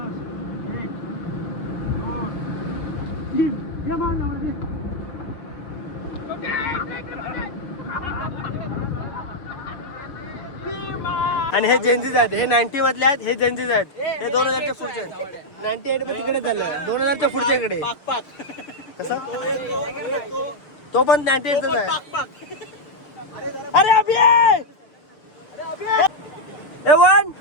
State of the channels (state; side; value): late; right; 6.7 ms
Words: आणि हे जेन्झीज आहेत, हे 90 मधले आहेत, हे जेन्झीज आहेत, हे 2000च्या पुढचे आहेत. 98 मध्ये तिकडे झालं, 2000च्या पुढच्या इकडे. कसं तो पण 98च आहे. अरे अभि 1